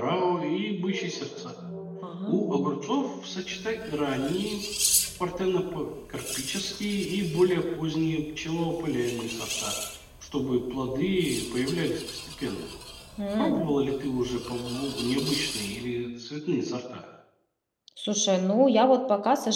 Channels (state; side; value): identical; both; correlation 1.00